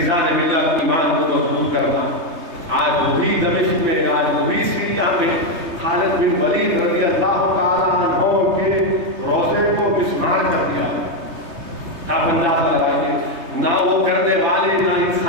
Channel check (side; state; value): left; late; 3.2 ms